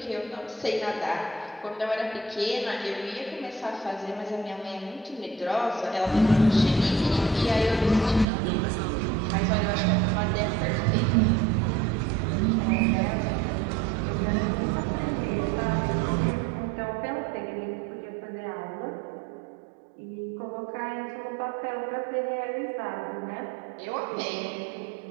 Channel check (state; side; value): drops out; left; at 8.2 s